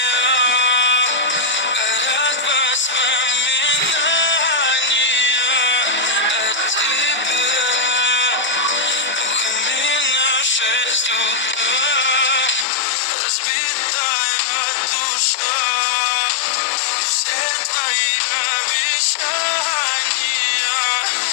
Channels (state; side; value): drops out; right; at 12.7 s